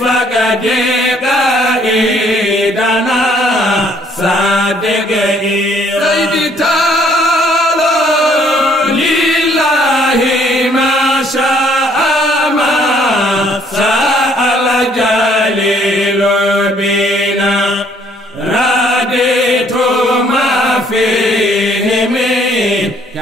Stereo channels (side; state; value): both; normal; correlation 0.63